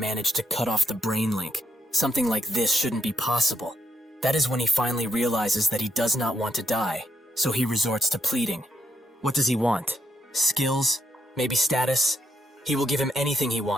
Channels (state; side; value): normal; both; correlation 0.78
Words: to cut off the brain link. Something like this shouldn't be possible. That is when he finally realizes that he does not want to die, so he resorts to pleading. What does he want? Skills? Maybe status? He will give him anything he